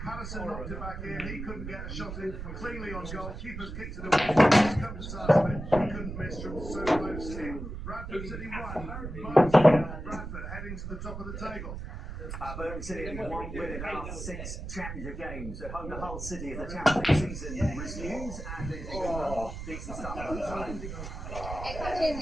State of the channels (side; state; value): right; noise; rumble, 8 dB below the sound